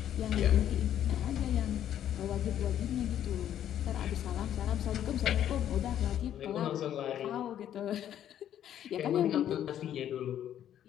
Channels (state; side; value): quieter; right; 10.7 dB